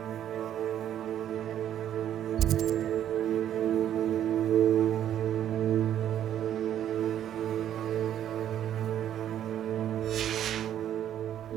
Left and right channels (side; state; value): left; quieter; 10.7 dB